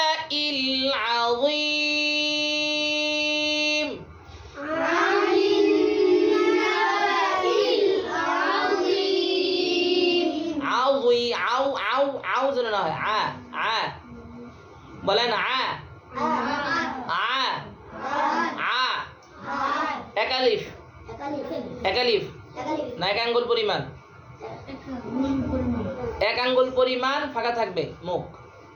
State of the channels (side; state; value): both; identical; correlation 1.00